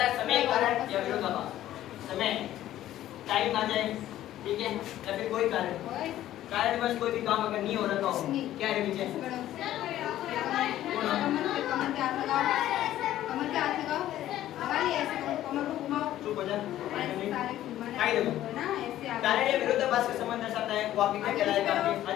समय, कारण या विरोधाभास। समय, टाइम आ जाए, ठीक है, या फिर कोई कारण बस कोई भी काम अगर नहीं हो रहा हो, क्या है विजय? चुप हो जा। कारण या विरोधाभास का संबंध दर्शाता है, वो आपके क्या कहलाएगा? आपके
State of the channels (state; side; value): quieter; right; 13.2 dB